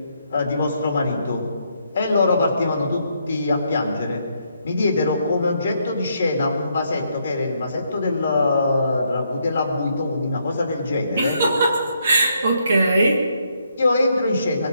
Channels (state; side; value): inverted; both; correlation -0.75